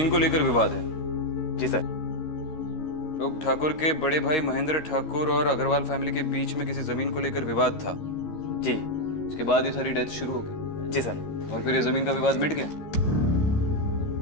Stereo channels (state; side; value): late; right; 13 ms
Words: को लेकर विवाद है। जी सर। लोग ठाकुर के बड़े भाई महेंद्र ठाकुर और अग्रवाल फैमिली के बीच में किसी जमीन को लेकर विवाद था। जी। इसके बाद ये सारी डेथ शुरू हो गई। जी सर। और फिर ये जमीन का विवाद मिट गया।